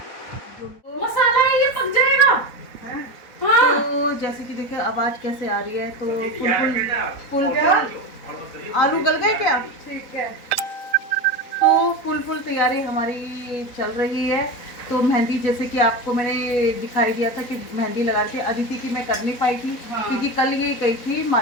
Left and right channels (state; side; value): late; right; 4.0 ms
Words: मसाला है, ये पक जाएगा। हाँ। तो जैसे कि देखिए आवाज कैसे आ रही है, तो फुल आलू गल गए क्या? ठीक है। तो फुल तैयारी हमारी चल रही है। तो मेहंदी, जैसे कि आपको मैंने दिखाई दिया था कि मेहंदी लगा रही थी। अदिति की मैं कर नहीं पाई थी, हाँ। क्योंकि कल ये गई थी